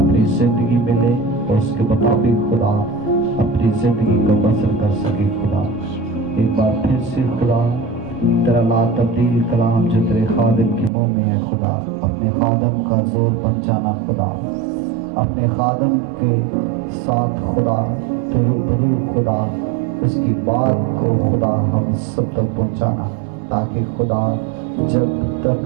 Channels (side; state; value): left; drops out; at 10.9 s